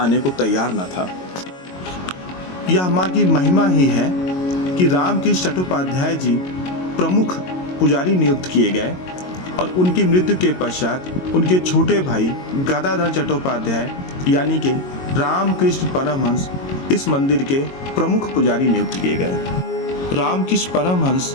को तैयार न था। यह माँ की महिमा ही है कि रामकृष्ण चट्टोपाध्याय जी प्रमुख पुजारी नियुक्त किए गए और उनकी मृत्यु के पश्चात उनके छोटे भाई गदाधर चट्टोपाध्याय यानी कि रामकृष्ण परमहंस इस मंदिर के प्रमुख पुजारी नियुक्त किए गए। रामकृष्ण परमहंस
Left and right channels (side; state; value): right; late; 22 ms